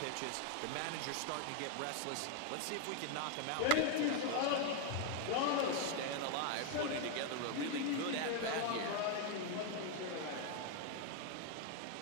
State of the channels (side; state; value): both; different; correlation 0.01